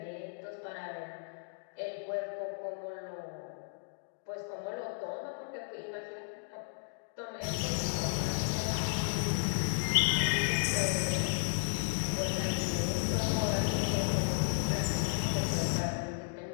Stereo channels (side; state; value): right; silent; digital silence